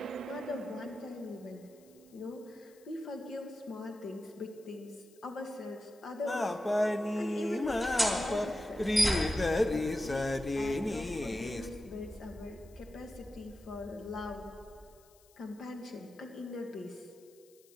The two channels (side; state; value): left; noise; hiss, 28 dB below the sound